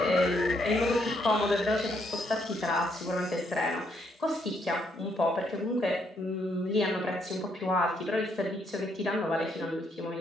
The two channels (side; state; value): both; normal; correlation 0.74